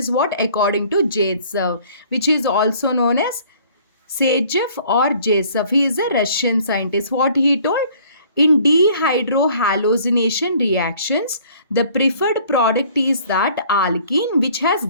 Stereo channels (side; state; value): both; inverted; correlation -0.55